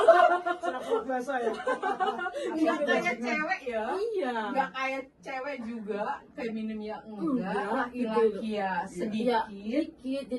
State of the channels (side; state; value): both; identical; correlation 1.00